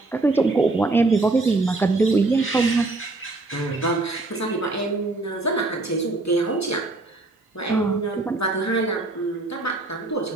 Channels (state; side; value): quieter; left; 3.1 dB